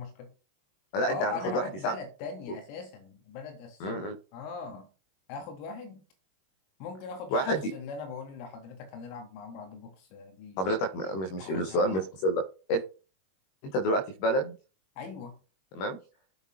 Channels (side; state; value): right; late; 21 ms